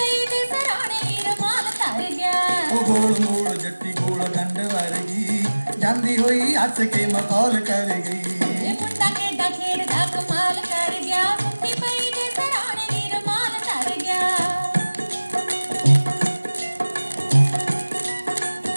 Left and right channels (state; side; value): inverted; both; correlation -1.00